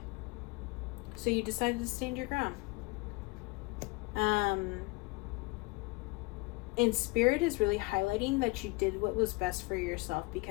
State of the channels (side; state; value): right; quieter; 25.2 dB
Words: So you decided to stand your ground. And Spirit is really highlighting that you did what was best for yourself